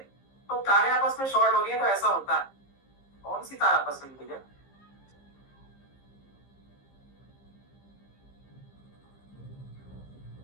तो तारे आपस में शॉर्ट हो रही है, तो ऐसा होता है। कौन सी तार आपस में मिल है?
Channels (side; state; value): right; late; 15 ms